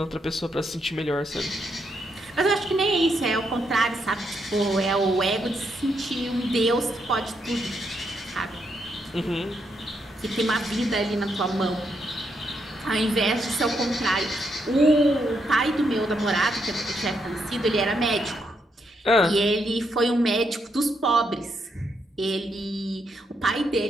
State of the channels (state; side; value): normal; both; correlation 0.79